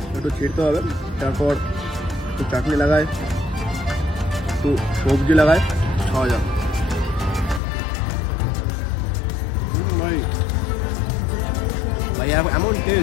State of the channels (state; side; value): drops out; right; at 7.6 s